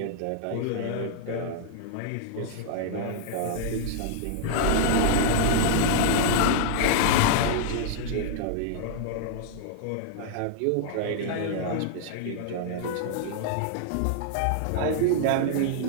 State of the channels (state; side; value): different; both; correlation -0.01